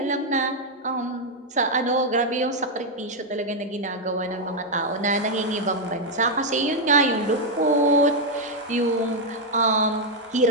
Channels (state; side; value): normal; both; correlation 0.01